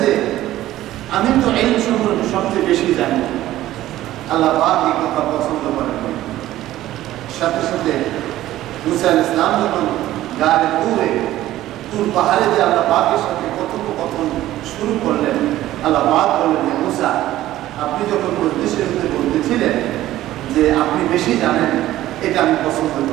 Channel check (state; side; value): quieter; left; 14.6 dB